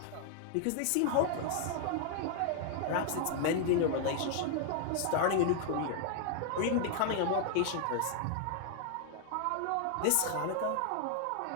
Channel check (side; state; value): both; different; correlation 0.00